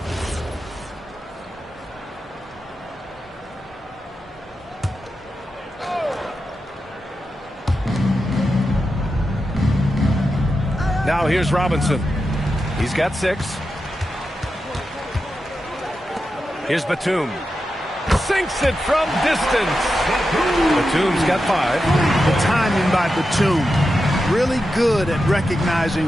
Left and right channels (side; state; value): both; normal; correlation 0.89